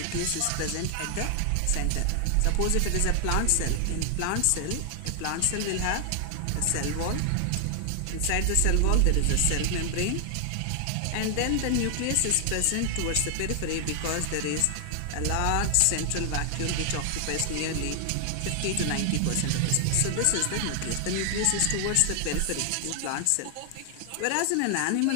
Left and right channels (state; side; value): different; both; correlation 0.00